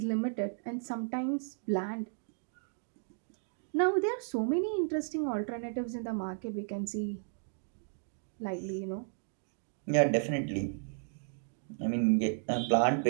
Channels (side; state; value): left; silent; digital silence